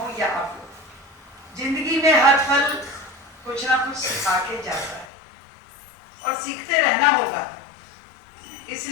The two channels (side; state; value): right; drops out; at 5.1 s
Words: या आप लोग। जिंदगी में हर पल कुछ ना कुछ सिखा के जाता है और सीखते रहना होगा।